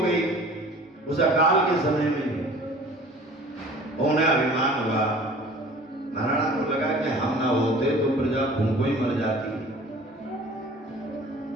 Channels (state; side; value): normal; both; correlation 0.46